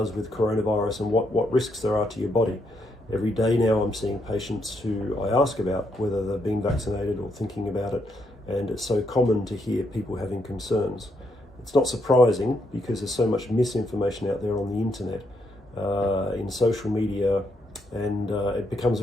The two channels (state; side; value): normal; both; correlation 0.77